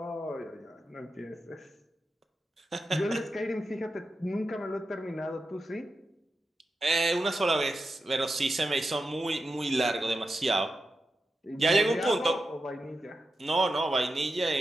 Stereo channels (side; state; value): both; normal; correlation 0.90